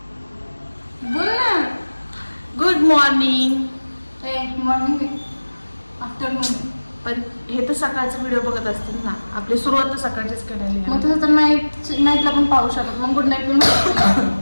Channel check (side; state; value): both; inverted; correlation -1.00